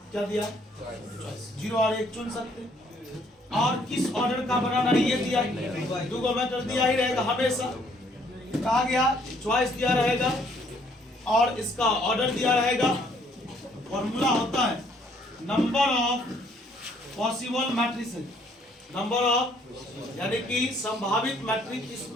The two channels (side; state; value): both; normal; correlation 0.64